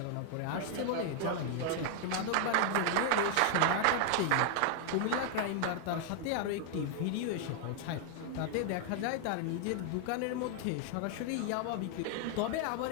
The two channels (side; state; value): both; different; correlation 0.00